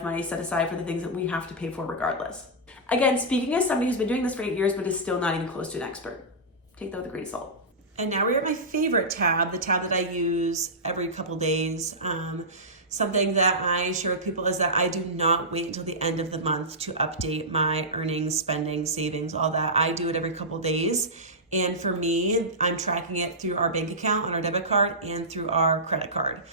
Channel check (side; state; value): both; normal; correlation -0.14